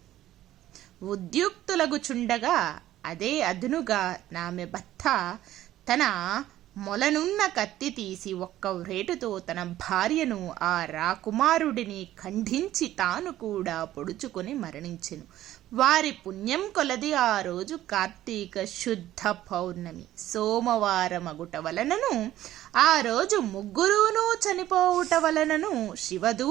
ఉద్యుక్తులగుచుండగా అదే అదునుగా ఆమె భర్త తన మొలనున్న కత్తి తీసి ఒక్క వ్రేటుతో తన భార్యను ఆ రాకుమారుడిని ఖండించి తాను కూడా పొడుచుకొని మరణించెను. వారి పుణ్యం కొలది ఆ రోజు కార్తీక శుద్ధ పౌర్ణమి సోమవారమగుట వలనను ఆ రోజు ముగ్గురును చనిపోవుట వలనను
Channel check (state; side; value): quieter; left; 13.8 dB